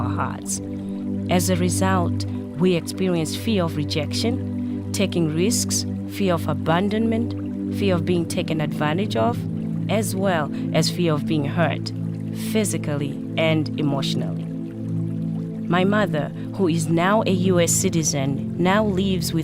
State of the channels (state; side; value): identical; both; correlation 1.00